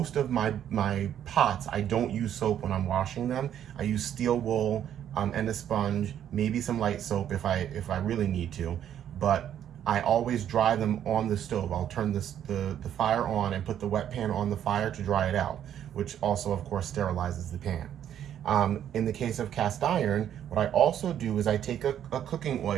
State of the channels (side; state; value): left; quieter; 10.1 dB